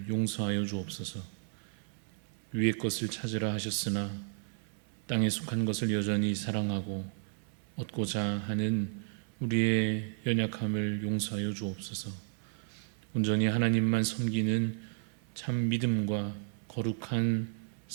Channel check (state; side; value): silent; left; 56 dB below the other